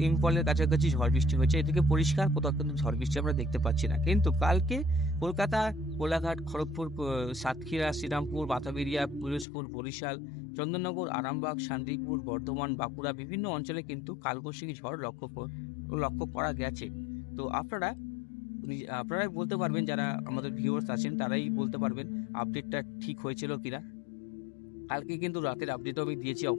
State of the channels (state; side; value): drops out; right; at 9.5 s